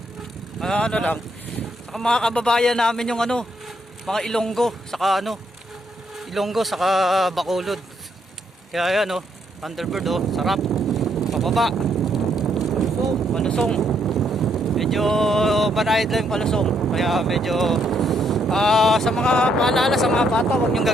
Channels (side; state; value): both; normal; correlation 0.74